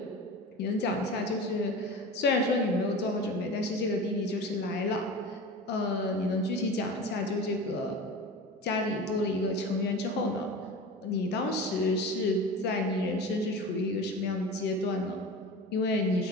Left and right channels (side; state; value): both; normal; correlation 0.32